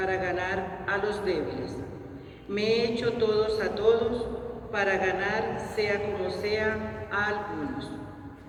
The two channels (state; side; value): identical; both; correlation 1.00